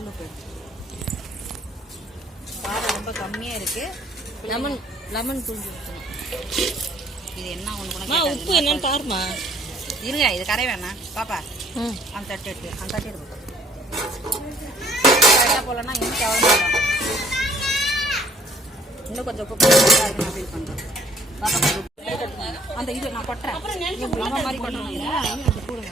உப்பு எடு. காரம் ரொம்ப கம்மியாக இருக்கு. லெமன் புழிஞ்சு ஊற்றணும். இது என்ன ஒன்று உப்பு என்னன்னு பாருமா. இருங்க, இது கரை வேணாம் பாப்பா. அந்த தட்டு எடுத்து அந்த தட்டு எடுத்து கரெக்டாக போகலன்னா இன்னும் எவ்வளோ இன்னும் கொஞ்சம் உப்பு போட்டு அதுக்கு நான் ஃபீல் பண்ணுறேன். பாப்பா கொஞ்சம் உப்பு எடுத்துக்கோங்க. அந்த இது நான் கொட்டுறேன். நம்ம மாதிரி கொட்டணும் இல்லை, அது போடுங்க.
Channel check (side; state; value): both; normal; correlation 0.60